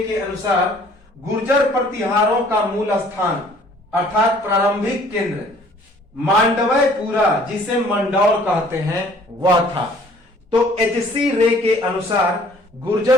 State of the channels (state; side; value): normal; both; correlation 0.56